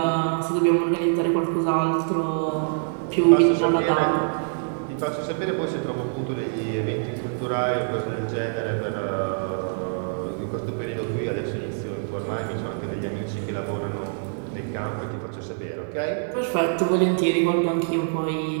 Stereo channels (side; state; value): left; silent; 58 dB below the other